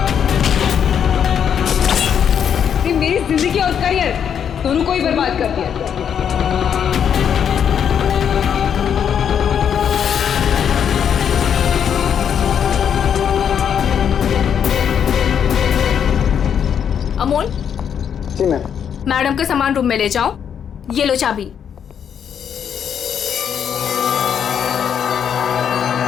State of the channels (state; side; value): quieter; right; 8.2 dB